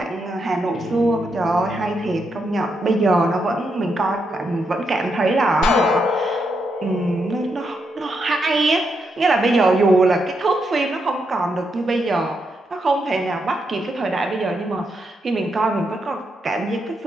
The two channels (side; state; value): both; normal; correlation 0.81